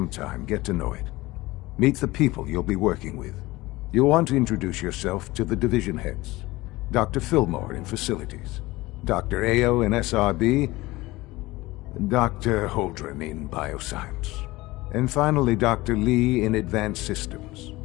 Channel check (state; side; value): quieter; right; 19.9 dB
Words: time, get to know it. Meet the people you'll be working with. You'll want to introduce yourself to the division heads. Dr. Fillmore in Facilities, Dr. Ayo in SRB, Dr. Holdren in bioscience. And finally, Dr. Lee in advanced systems.